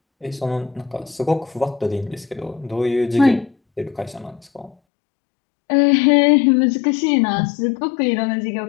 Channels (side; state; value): right; drops out; at 4.8 s